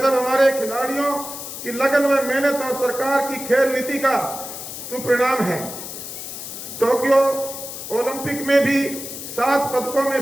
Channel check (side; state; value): left; noise; hiss, 9 dB below the sound